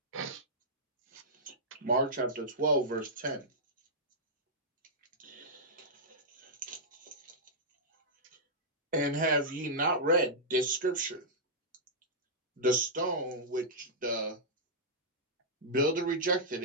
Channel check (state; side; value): normal; both; correlation -0.10